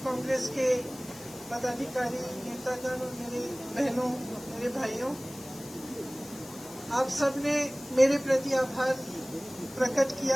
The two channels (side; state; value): left; noise; hiss, 17 dB below the sound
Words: कांग्रेस के पदाधिकारी, नेतागण और मेरे बहनों, मेरे भाइयों, आप सबने मेरे प्रति आभार प्रकट